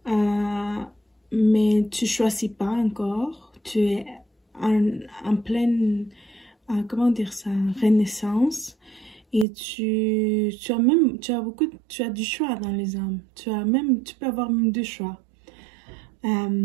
mais tu ne choisis pas encore. Tu es en pleine, comment dire ça, renaissance. Et tu as du choix dans les hommes. Tu peux avoir même 2 choix.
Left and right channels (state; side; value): drops out; left; at 9.5 s